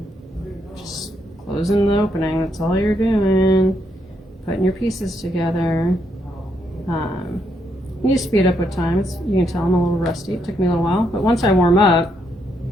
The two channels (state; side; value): normal; both; correlation 0.77